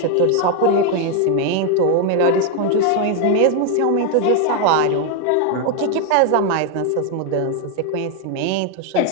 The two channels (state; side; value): different; both; correlation 0.01